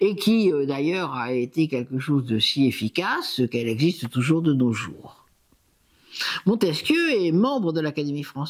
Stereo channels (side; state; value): both; identical; correlation 1.00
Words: qui d'ailleurs a été quelque chose de si efficace qu'elle existe toujours de nos jours. Montesquieu est membre de l'Académie